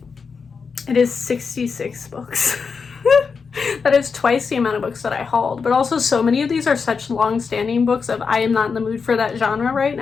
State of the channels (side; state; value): right; quieter; 5.4 dB